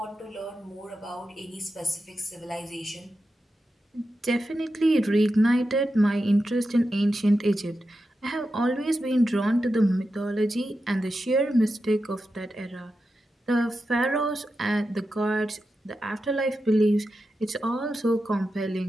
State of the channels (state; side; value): normal; both; correlation 0.90